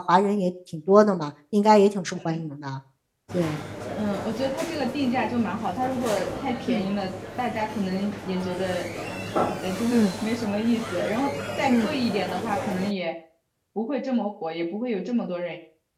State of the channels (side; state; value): both; identical; correlation 1.00